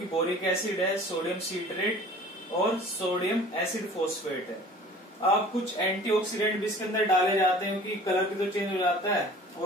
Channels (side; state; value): both; normal; correlation 0.46